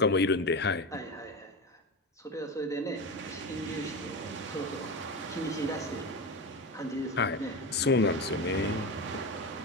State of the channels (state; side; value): normal; both; correlation 0.22